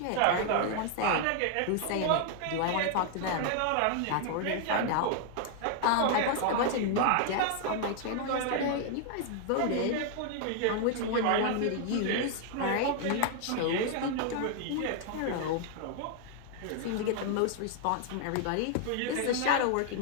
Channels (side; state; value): both; different; correlation 0.00